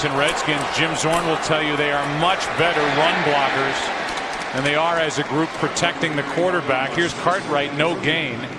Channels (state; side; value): identical; both; correlation 1.00